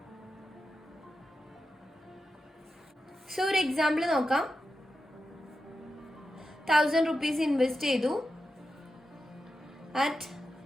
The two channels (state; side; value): normal; both; correlation 0.89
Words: So ഒരു എക്സാമ്പിൾ നോക്കാം. 1000 rupees ഇൻവെസ്റ്റ് ചെയ്തു at